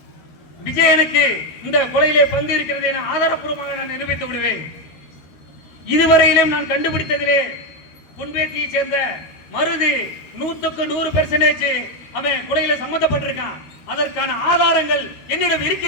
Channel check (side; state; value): right; late; 13 ms